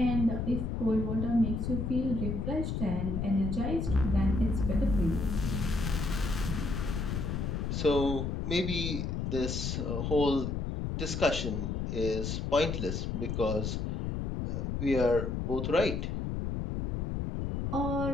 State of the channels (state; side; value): noise; left; rumble, 2 dB below the sound